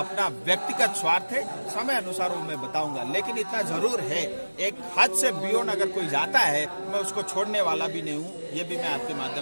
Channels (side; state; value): both; inverted; correlation -1.00